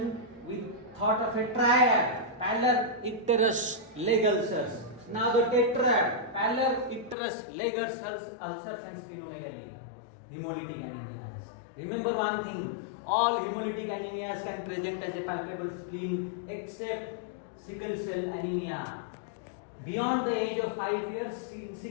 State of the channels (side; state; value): right; drops out; at 7.2 s